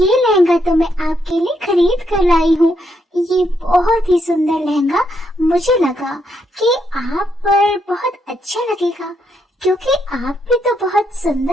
लहंगा तो मैं आपके लिए खरीद कर लाई हूँ। ये बहुत ही सुंदर लहंगा मुझे लगा कि आप पर बहुत अच्छा लगेगा, क्योंकि आप भी तो बहुत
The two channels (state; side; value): normal; both; correlation 0.77